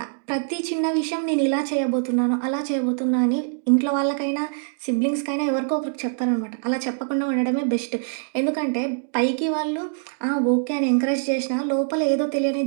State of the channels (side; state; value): left; silent; digital silence